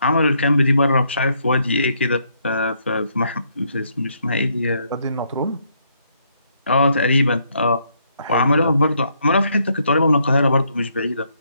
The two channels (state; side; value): inverted; both; correlation -0.73